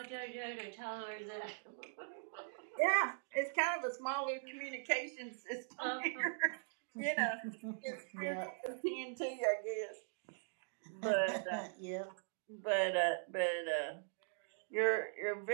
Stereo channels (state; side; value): silent; left; digital silence